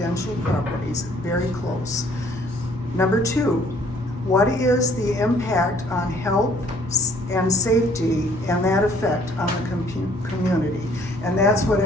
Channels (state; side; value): normal; both; correlation 0.60